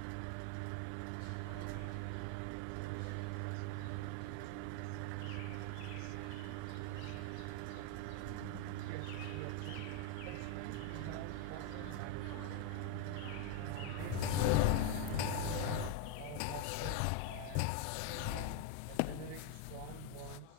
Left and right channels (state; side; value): different; both; correlation 0.02